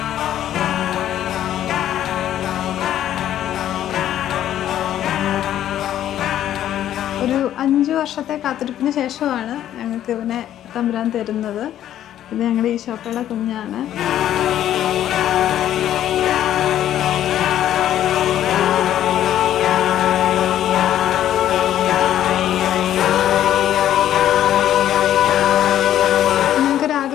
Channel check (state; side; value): quieter; right; 11.6 dB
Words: ഒരു 5 വർഷത്തെ കാത്തിരിപ്പിന് ശേഷമാണ് ഞങ്ങൾക്ക് ഇവനെ തമ്പുരാൻ തരുന്നത്. ഇത് ഞങ്ങളുടെ ഈശോപ്പയുടെ കുഞ്ഞാണ്.